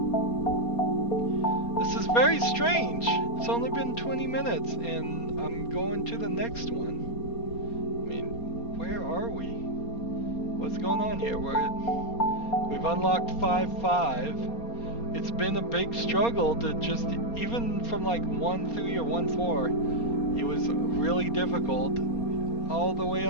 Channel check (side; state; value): right; late; 4.3 ms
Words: This is very strange. It's only been 20 minutes and I'm going to the next one. I mean, where are we? What's going on here? We've unlocked 5.5. It's been a big struggle to just, even from like 1.3 or 1.4, it was really difficult, all the way